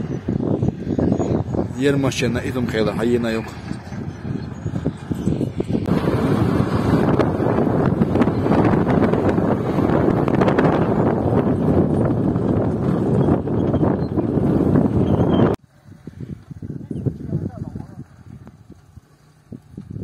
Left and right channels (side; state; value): both; identical; correlation 1.00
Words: ермашена идум хела хайена yok